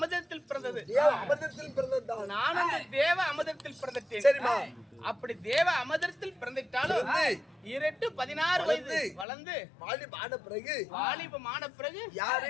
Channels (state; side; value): drops out; right; at 9.2 s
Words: பிறந்தது. நானும் அந்த தேவ அமிர்தத்தில் பிறந்துட்டேன். அப்படி தேவ அமிர்தத்தில் பிறந்துட்டாலும் 16 வயது வளர்ந்து வாலிபமான பிறகு